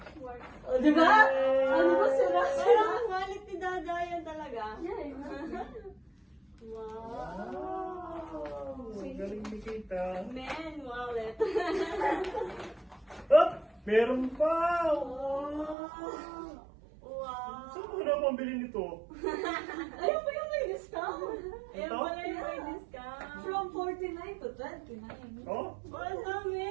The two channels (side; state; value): left; drops out; at 15.8 s